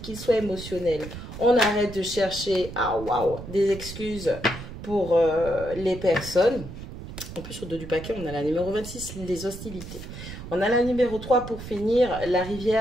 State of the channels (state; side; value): noise; right; rumble, 11 dB below the sound